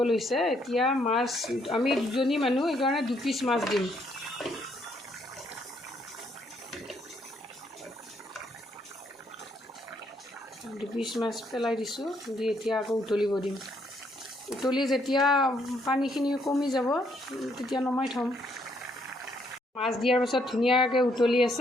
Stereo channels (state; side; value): normal; both; correlation 0.71